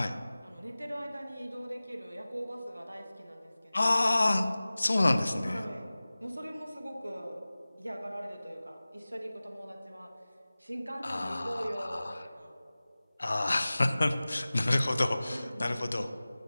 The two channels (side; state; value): both; inverted; correlation -0.98